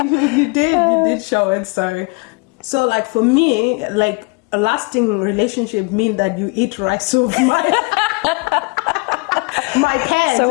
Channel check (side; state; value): right; quieter; 30.3 dB